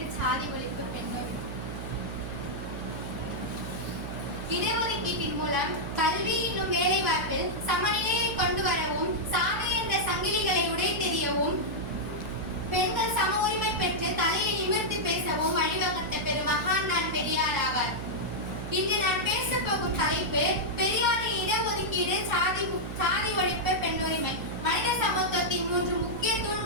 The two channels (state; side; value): noise; right; hum, 7 dB below the sound